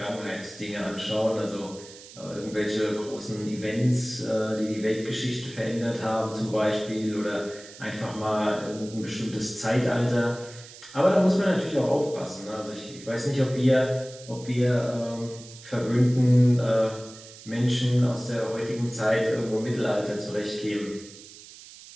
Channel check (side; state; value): right; noise; hiss, 18 dB below the sound